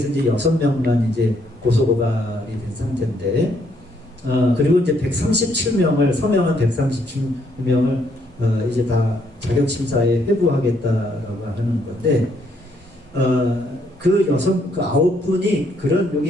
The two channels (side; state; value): both; normal; correlation 0.71